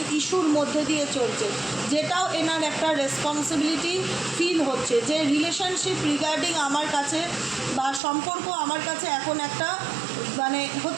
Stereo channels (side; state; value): left; drops out; at 8.0 s